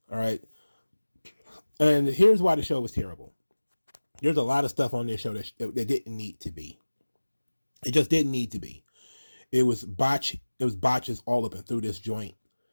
right. And here's why the show was terrible. There's a lot of stuff on this show that didn't need to be. It just didn't need to be. It was botches all up and through this joint.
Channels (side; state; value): both; inverted; correlation -1.00